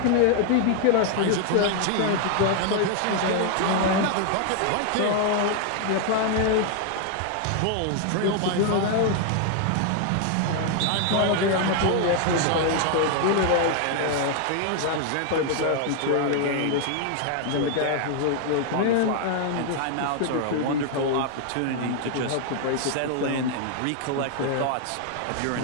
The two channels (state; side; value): different; both; correlation 0.00